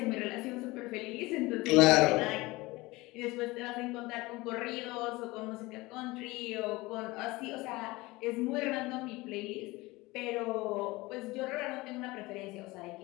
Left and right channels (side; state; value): right; quieter; 21.4 dB